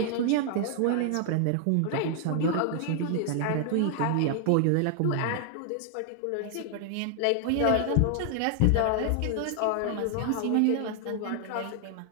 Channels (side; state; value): both; different; correlation 0.00